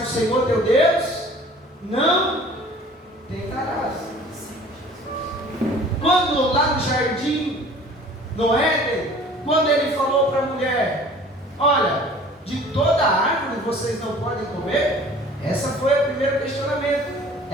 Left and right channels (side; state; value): both; normal; correlation 0.48